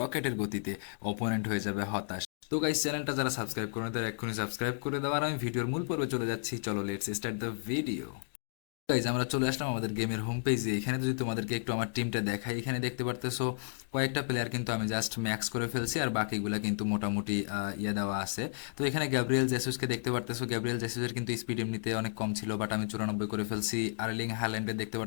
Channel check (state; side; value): silent; right; digital silence